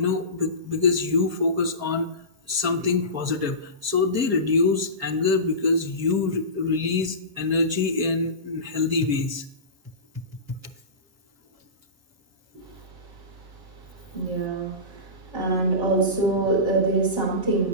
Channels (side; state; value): left; late; 7.2 ms